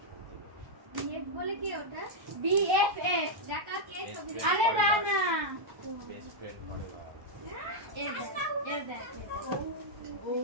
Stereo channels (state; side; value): late; left; 1.1 ms